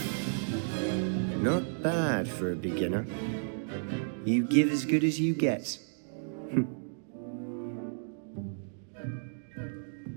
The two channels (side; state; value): left; silent; digital silence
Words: Not bad for a beginner. You give as good as you get.